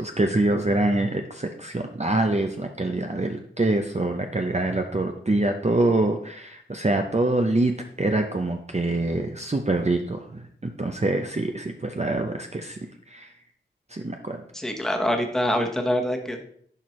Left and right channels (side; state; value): both; normal; correlation 0.73